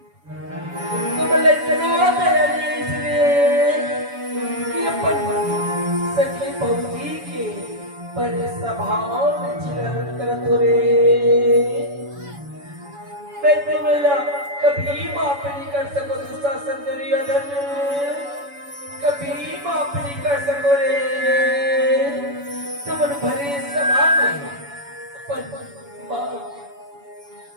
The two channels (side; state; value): left; late; 7.1 ms